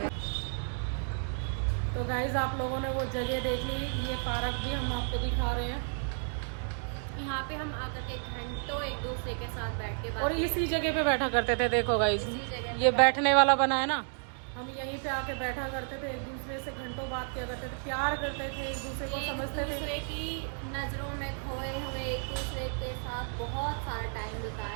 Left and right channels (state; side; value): silent; left; 55 dB below the other